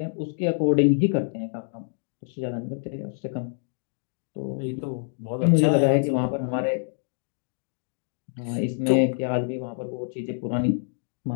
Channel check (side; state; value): right; silent; digital silence